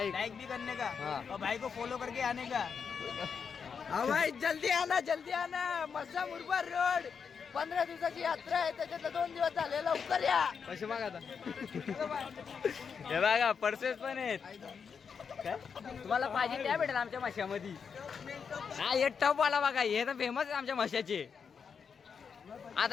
भी करने का हाँ. और भाई को फॉलो करके आने का. भाई जल्दी आना मस्सा मुरबाड रोड 15 दिवसाची यात्रा आहे त्याच्यातलं 2 दिवस झाले लवकर या पैसे मागा आता हे बघा पर्सेस पण आहेत काय तुम्हाला पाहिजे त्या भेटेल आमच्या माशामध्ये हा हे टप वाला बघा हे तर फेमस आहे आमच्या माशाचे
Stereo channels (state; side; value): quieter; right; 6.3 dB